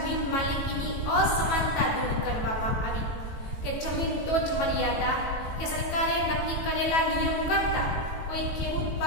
માલિકીની અસમાનતા દૂર કરવામાં આવી. કે જમીન ટોચ મર્યાદા કે સરકારે નક્કી કરેલા નિયમ કરતા કોઈ ખેડૂત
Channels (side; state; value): right; late; 18 ms